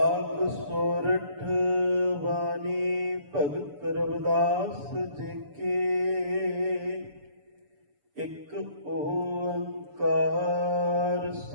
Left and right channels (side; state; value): left; late; 6.9 ms